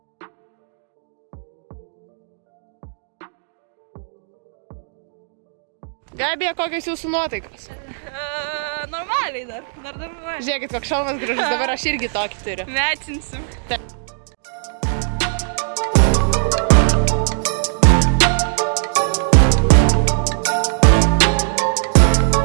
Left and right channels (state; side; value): silent; left; digital silence